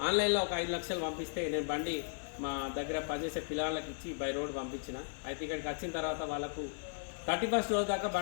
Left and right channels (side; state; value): right; silent; digital silence